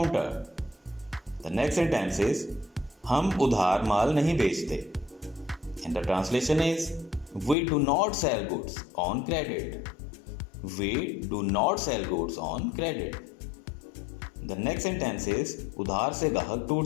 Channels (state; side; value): drops out; right; at 7.6 s